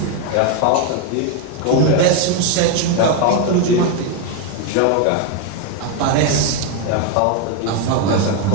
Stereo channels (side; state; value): both; different; correlation 0.01